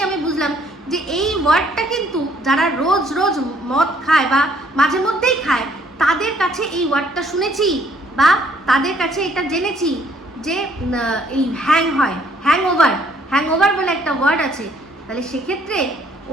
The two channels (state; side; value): normal; both; correlation 0.64